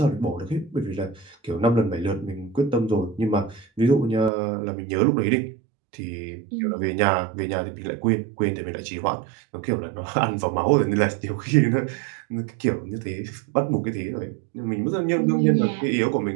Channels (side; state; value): left; drops out; at 4.3 s